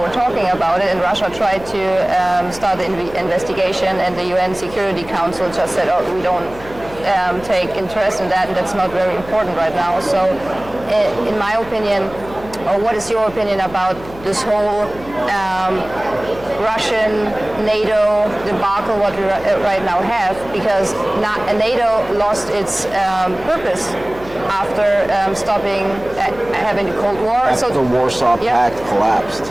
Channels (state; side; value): noise; left; hum, 18 dB below the sound